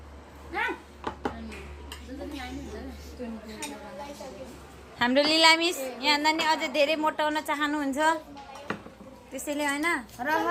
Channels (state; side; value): identical; both; correlation 1.00